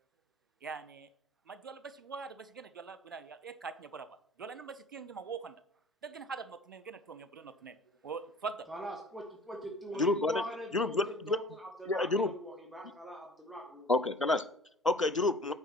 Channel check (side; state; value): both; normal; correlation 0.46